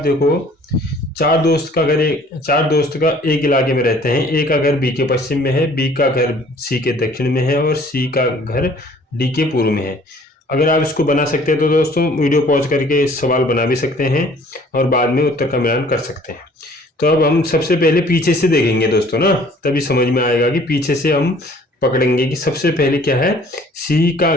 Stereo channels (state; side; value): normal; both; correlation 0.55